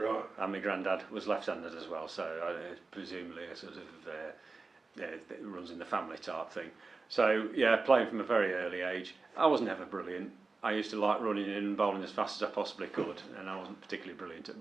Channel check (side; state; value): left; quieter; 3.9 dB